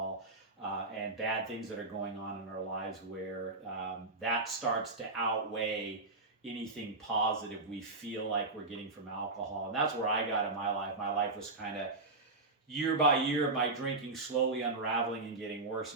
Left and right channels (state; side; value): quieter; left; 3.3 dB